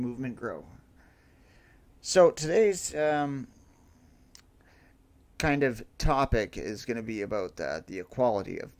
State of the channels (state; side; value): identical; both; correlation 1.00